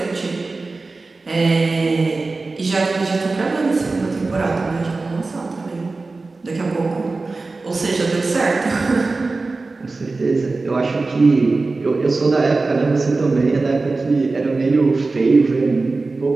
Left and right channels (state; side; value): quieter; left; 3.6 dB